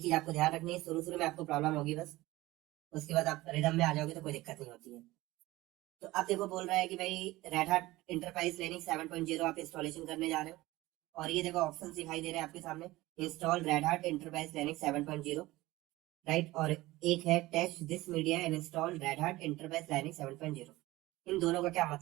आपको ध्यान रखनी है, शुरू शुरू में आपको प्रॉब्लम होगी बस, उसके बाद आप रिदम में आ जाओगे तो कोई दिक्कत नहीं होती है। तो अब देखो बोल रहा है कि भाई रेड हार्ट इंटरप्राइज लिनक्स 7.0 आप इंस्टॉलेशन करने जा रहे हो, और ये देखो ऑप्शन दिखाई दे रहे हैं आपके सामने, install Red Hat Enterprise Linux 7.0, right. और एक है test this media and install Red Hat Enterprise Linux 7.0। इन दोनों का क्या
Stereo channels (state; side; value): quieter; left; 18.6 dB